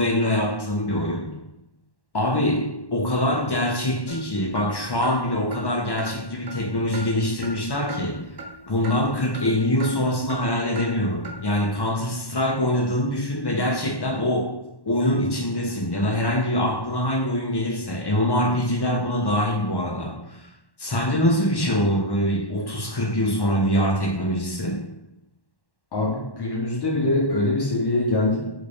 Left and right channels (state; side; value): late; right; 1.1 ms